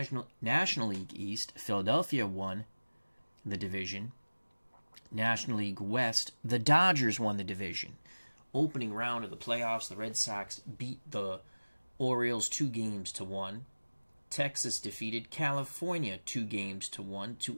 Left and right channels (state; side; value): inverted; both; correlation -1.00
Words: National League East, Philadelphia won the division. National League West, the Dodgers won the division. Opening round of the playoffs, the Red Sox beat the Orioles 2-1. Texas defeated California 2-1 to